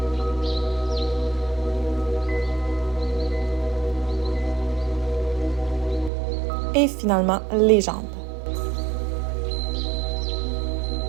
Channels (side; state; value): left; drops out; at 6.1 s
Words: et finalement les jambes.